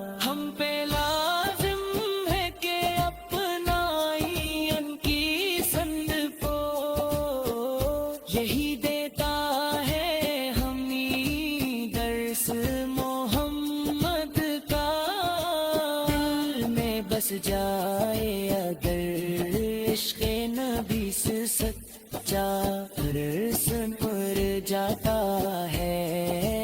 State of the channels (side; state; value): both; identical; correlation 1.00